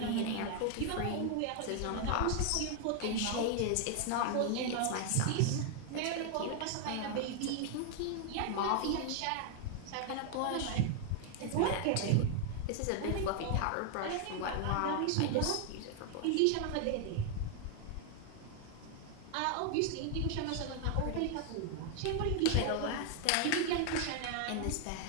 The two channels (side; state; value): both; different; correlation 0.00